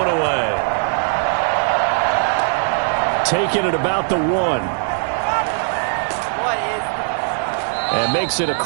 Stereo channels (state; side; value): silent; left; digital silence